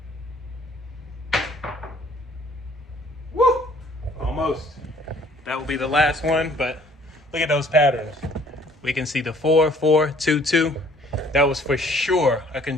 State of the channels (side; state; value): both; normal; correlation 0.58